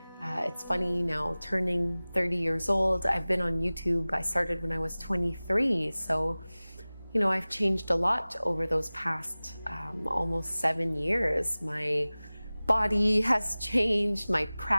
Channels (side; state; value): both; inverted; correlation -0.99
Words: It's funny now, turning 30 years old. I've been on YouTube. I started when I was 23, so you know, I've changed a lot over those past almost 7 years. My body has changed, my